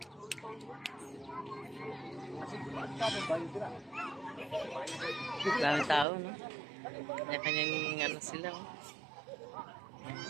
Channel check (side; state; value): left; drops out; at 6.1 s